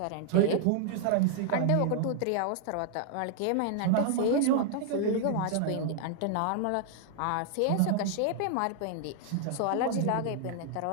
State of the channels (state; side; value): different; both; correlation 0.00